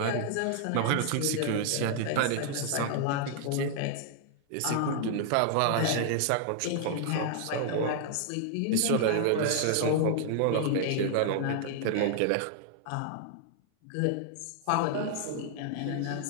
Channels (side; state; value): both; different; correlation 0.00